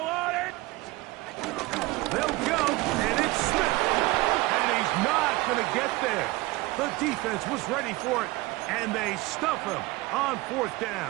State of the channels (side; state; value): left; quieter; 20.8 dB